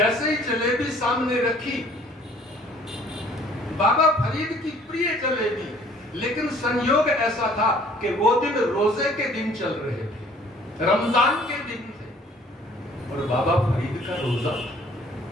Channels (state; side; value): normal; both; correlation 0.56